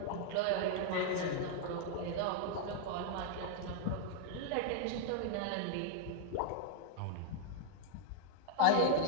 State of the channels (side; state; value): both; different; correlation 0.00